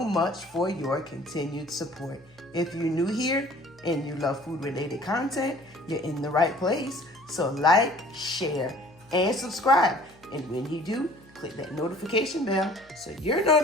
for your continued support. If you're new here and you love food-related content, you're in the right place. So like, share, and subscribe. And when you do, click that notification bell so you're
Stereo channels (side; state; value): left; noise; hum, 29 dB below the sound